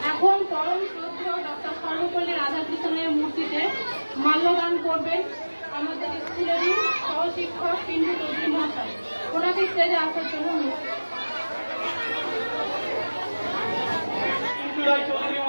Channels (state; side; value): inverted; both; correlation -1.00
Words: এখন পরম শ্রদ্ধেয় ডক্টর সর্বপল্লী রাধাকৃষ্ণের মূর্তিতে মাল্যদান করবেন আমাদের স্কুলেরই সহশিক্ষক পিন্টু চৌধুরী মহাশয়। ওনাকে স্টেজে আসার জন্য চৌধুরী